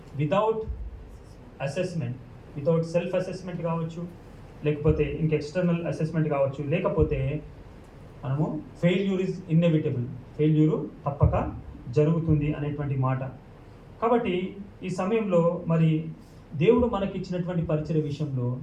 without assessment, without self assessment కావచ్చు, లేకపోతే ఇంక ఎక్స్టర్నల్ అసెస్మెంట్ కావచ్చు, లేకపోతే మనము ఫెయిల్యూర్ ఈజ్ ఇన్ఎవిటబుల్, ఫెయిల్యూరు తప్పక జరుగుతుంది అనేటువంటి మాట. కాబట్టి ఈ సమయంలో మరి దేవుడు మనకి ఇచ్చినటువంటి పరిచయ విషయంలో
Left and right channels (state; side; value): identical; both; correlation 1.00